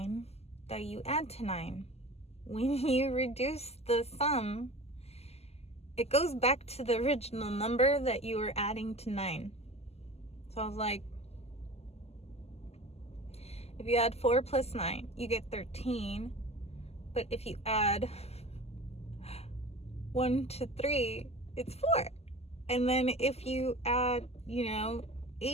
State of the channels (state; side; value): late; right; 0.30 ms